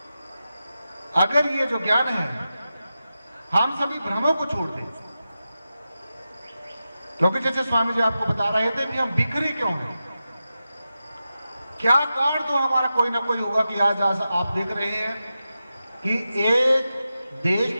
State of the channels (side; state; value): both; inverted; correlation -0.91